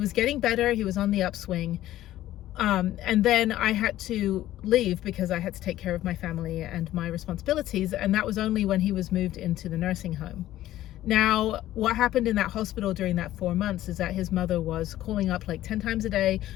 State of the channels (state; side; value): quieter; right; 14.1 dB